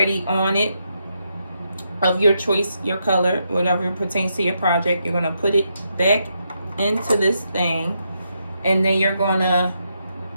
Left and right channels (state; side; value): inverted; both; correlation -0.81